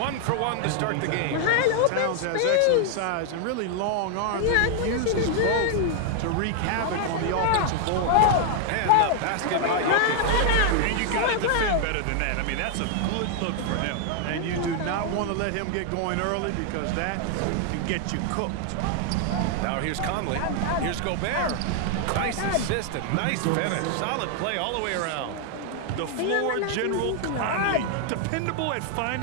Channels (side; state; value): both; different; correlation 0.00